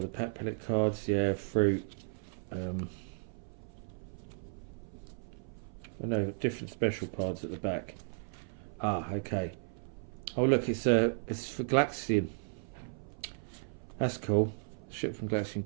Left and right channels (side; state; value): left; silent; 55 dB below the other